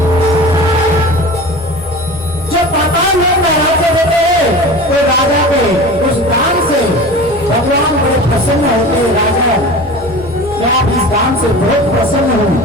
जो पाताल लोक में राज्य देते हैं तो राजा के उस दान से भगवान बड़े प्रसन्न होते हैं। राजा क्या आप इस दान से बहुत प्रसन्न हो,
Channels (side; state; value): both; normal; correlation 0.35